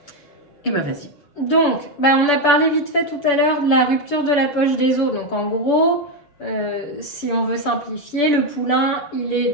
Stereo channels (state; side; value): late; right; 6.9 ms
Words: Et vas-y. Donc, on a parlé vite fait tout à l'heure de la rupture de la poche des os, donc en gros... si on veut simplifier, le poulain, il est